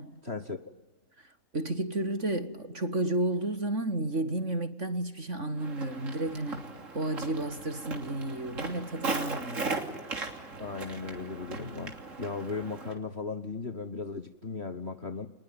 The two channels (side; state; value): left; late; 3.8 ms